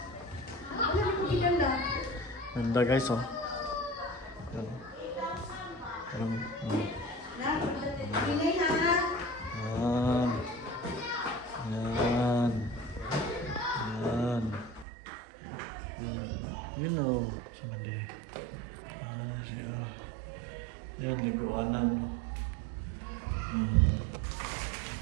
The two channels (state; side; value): drops out; left; at 14.9 s